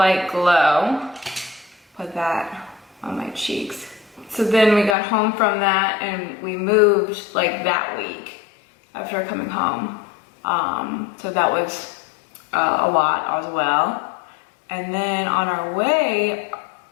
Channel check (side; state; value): right; drops out; at 5.0 s